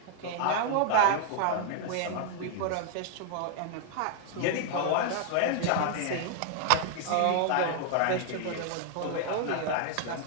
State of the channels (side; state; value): both; different; correlation 0.00